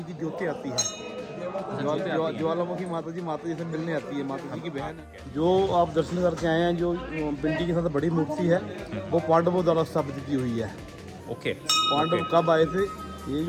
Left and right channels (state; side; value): identical; both; correlation 1.00